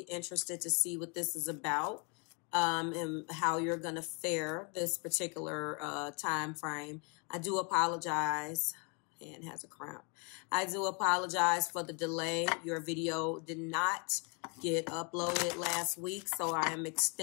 to see what this is about and how you're going to fare this particular time frame. I do apologize. And has a cramp. I do apologize for the delay. Your video did not get uploaded last week, so I am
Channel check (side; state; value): right; quieter; 34.5 dB